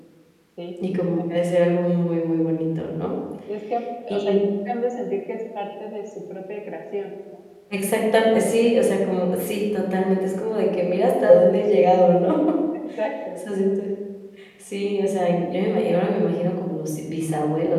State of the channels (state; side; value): identical; both; correlation 1.00